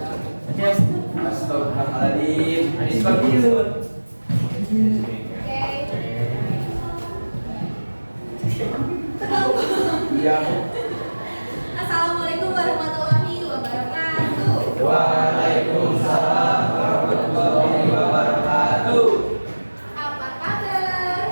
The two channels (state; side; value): inverted; both; correlation -1.00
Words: Anis Bakirun. Iya. Assalamualaikum warahmatullahi wabarakatuh. Waalaikumsalam warahmatullahi wabarakatuh. Apa